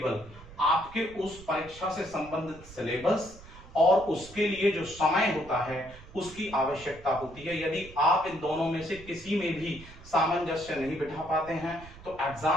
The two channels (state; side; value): noise; right; rumble, 19 dB below the sound